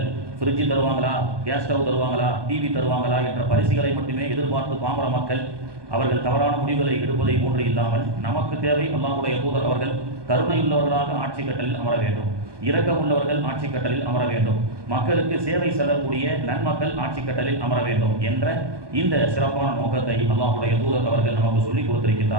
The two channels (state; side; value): late; left; 1.2 ms